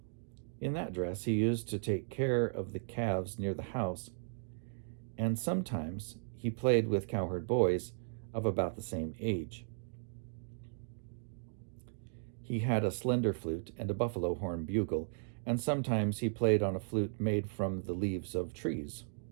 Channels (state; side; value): silent; left; digital silence